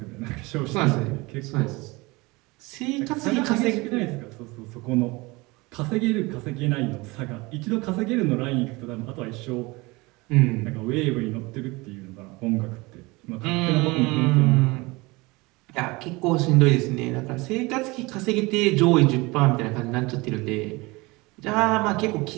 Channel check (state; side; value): quieter; left; 23.7 dB